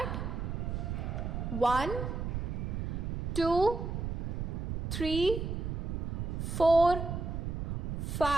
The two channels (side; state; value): right; noise; rumble, 2 dB below the sound